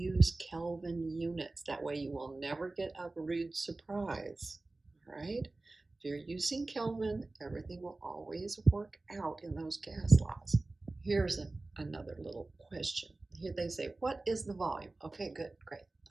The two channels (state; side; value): quieter; left; 3.1 dB